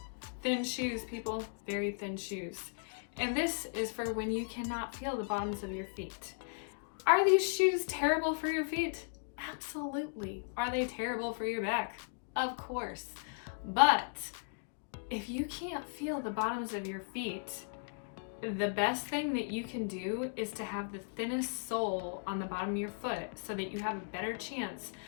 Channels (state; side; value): silent; right; digital silence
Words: thin shoes, people, very thin shoes. And this is for when you cannot feel the bottoms of your feet. Are these shoes terrible for your feet? Absolutely. Are they terrible for your back? Of course. But if you can't feel the bottoms of your feet, the best thing that you can do is to have the thinnest sole on the bottom of your foot, so that you have a better chance